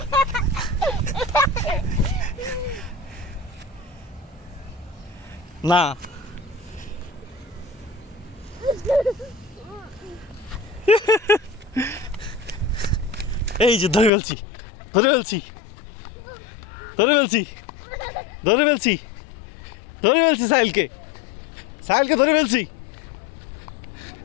না, এই যে ধরে ফেলছি, ধরে ফেলছি, ধরে ফেলছি, ধরে ফেলছি, ধরে ফেলছি সাহিলকে, সাহিলকে ধরে ফেলছি।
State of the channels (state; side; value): drops out; right; at 14.1 s